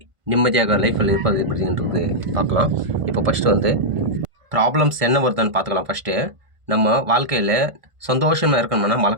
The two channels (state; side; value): late; left; 1.5 ms